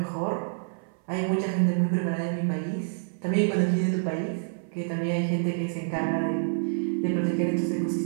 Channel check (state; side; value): silent; left; 57 dB below the other